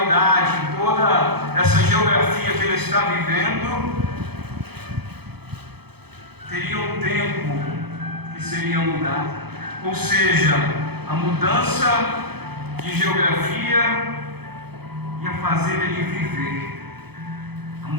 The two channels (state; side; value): late; left; 0.97 ms